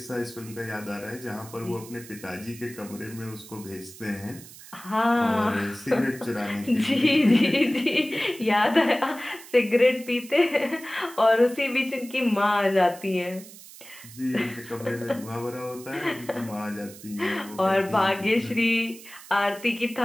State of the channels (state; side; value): noise; right; hiss, 18 dB below the sound